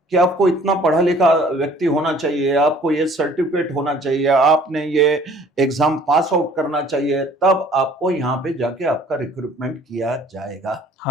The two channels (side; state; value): both; normal; correlation 0.54